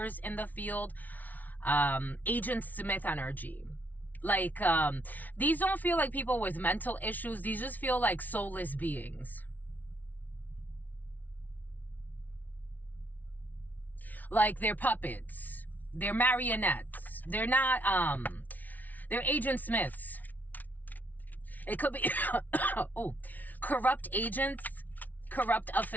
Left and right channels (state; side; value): late; right; 0.078 ms